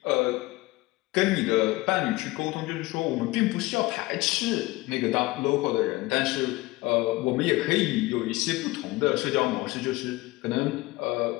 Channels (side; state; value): right; quieter; 20.4 dB